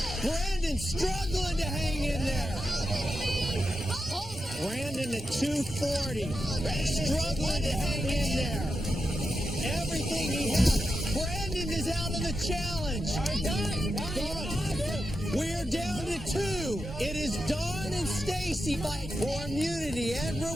Brandon struggling to hang in there. Brandon at 240. Struggling to hang in there. Everything he has. Brandon is out of the challenge. We are down to 2. It is Dawn and Stacy fight for immunity and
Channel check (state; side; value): normal; both; correlation 0.88